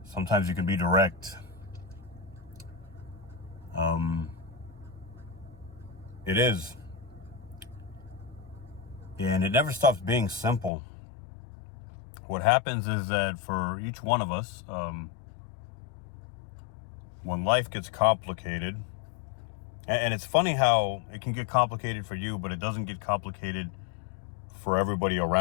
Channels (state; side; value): drops out; right; at 10.7 s